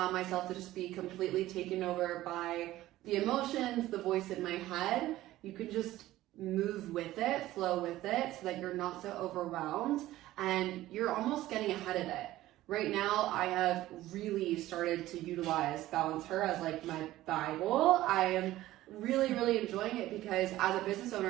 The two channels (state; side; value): quieter; left; 15.6 dB